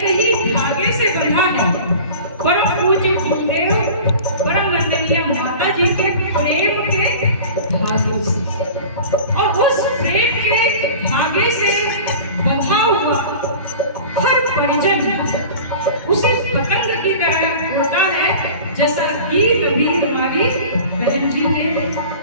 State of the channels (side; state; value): both; inverted; correlation -0.39